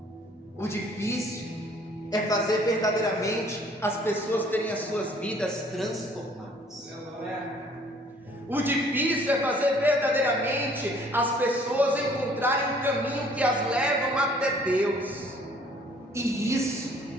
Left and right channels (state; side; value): normal; both; correlation 0.58